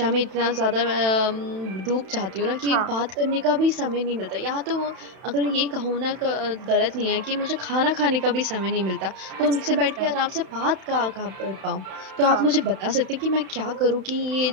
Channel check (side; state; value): left; late; 31 ms